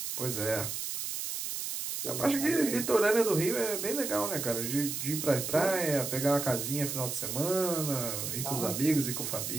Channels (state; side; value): noise; right; hiss, 4 dB below the sound